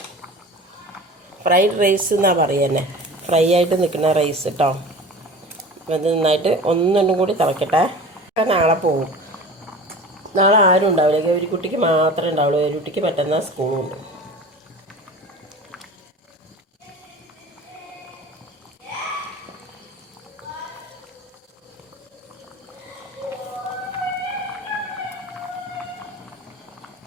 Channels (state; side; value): normal; both; correlation 0.38